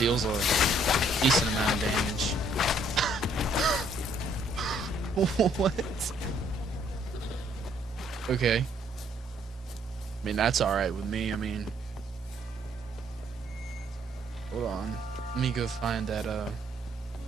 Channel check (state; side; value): normal; both; correlation 0.66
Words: a decent amount of damage. What? Okay. I mean, that's alright with me. I mean, hold on. Let me go find that,